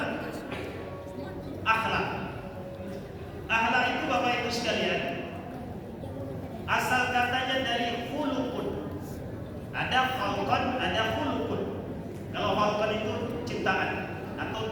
akhlak. Akhlak itu Bapak Ibu sekalian, asal katanya dari khuluqun. Ada khalqan, ada khuluqun. Kalau khalqan itu ciptaan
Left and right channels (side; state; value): both; identical; correlation 1.00